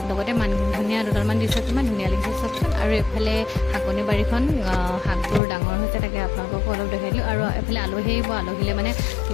लगते मान धनिया दुटालमान दिছে किमान धुनिया লাগিছে सबचोन और एफाले हाकनि बारीखन हाकबोर डाঙर হৈছে তাকে আপোনালোকক অলপ দেখাই দিলো আৰু এফালে আলহী আহিব আলহীলে মানে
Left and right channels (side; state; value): right; drops out; at 5.4 s